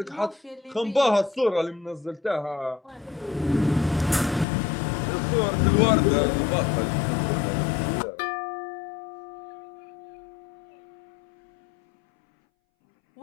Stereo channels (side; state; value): right; drops out; at 4.5 s